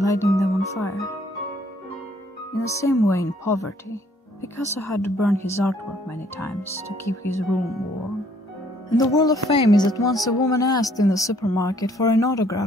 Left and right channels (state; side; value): normal; both; correlation 0.63